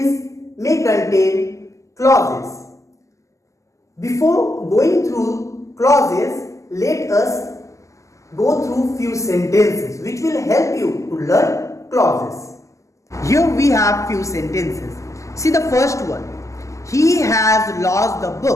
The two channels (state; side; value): late; right; 0.16 ms